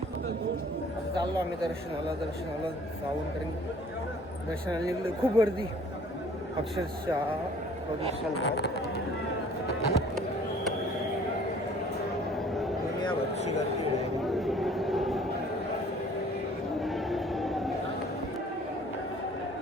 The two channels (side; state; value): both; normal; correlation 0.53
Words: आता चाललो आम्ही दर्शनाला जाऊन, कारण दर्शनाला निघलो. खूप गर्दी अक्षरशः दुनियाभरची गर्दी आहे.